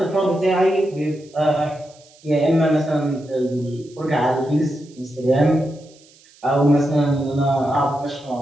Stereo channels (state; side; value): noise; right; hiss, 27 dB below the sound